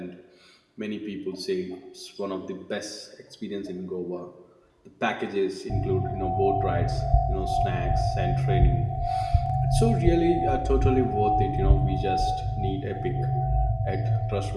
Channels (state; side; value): identical; both; correlation 1.00